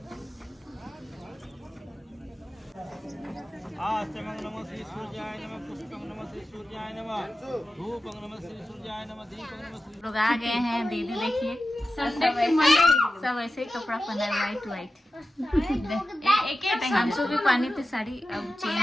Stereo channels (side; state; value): both; normal; correlation 0.93